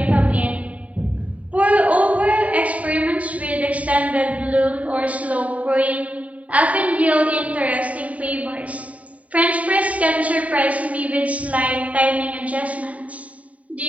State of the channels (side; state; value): left; late; 0.068 ms